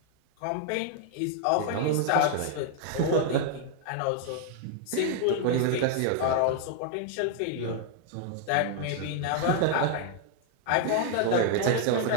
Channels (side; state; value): both; different; correlation 0.00